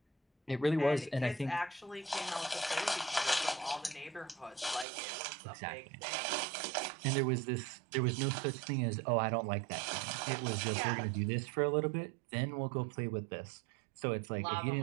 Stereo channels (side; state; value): left; drops out; at 4.9 s